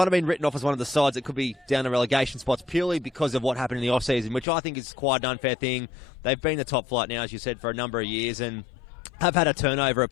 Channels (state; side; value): drops out; right; at 4.5 s